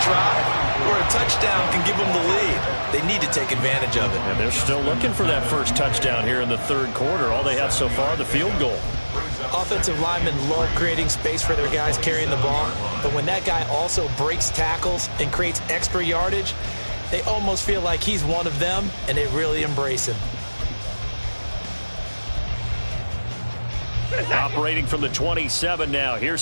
drive where a touchdown can give them the lead. They need to take advantage of it. And they're still looking for that 1st touchdown here in the 3rd quarter. All they have so far, the field goal. Offensive linemen love creating space for their guys carrying the ball, but when that guy also breaks tackles and creates extra yardage, they almost feel like he's one of them, and they really embrace him. Operating from the 27 now.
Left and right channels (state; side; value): inverted; both; correlation -1.00